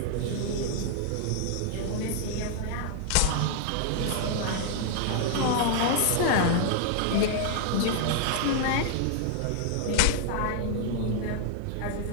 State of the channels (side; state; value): both; different; correlation 0.00